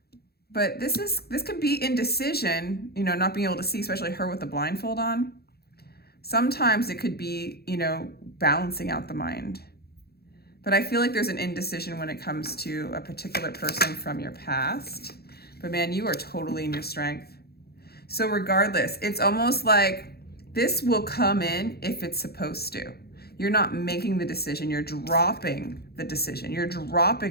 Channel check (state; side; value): late; right; 0.46 ms